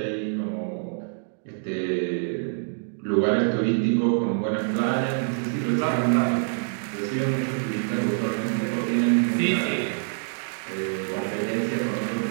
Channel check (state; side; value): silent; left; digital silence